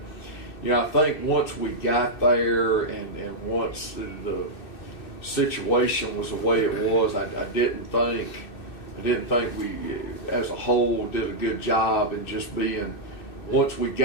I think once we got there and once the situation was the way it was, I didn't think we, as a whole, did a good job in just being, once we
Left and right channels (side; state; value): right; late; 2.6 ms